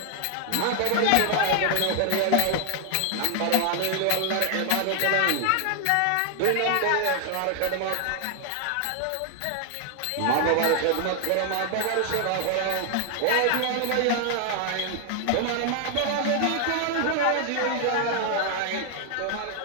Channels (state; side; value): different; both; correlation 0.00